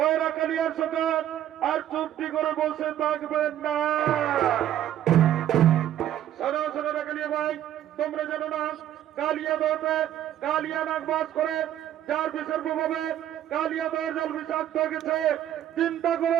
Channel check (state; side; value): quieter; left; 11.6 dB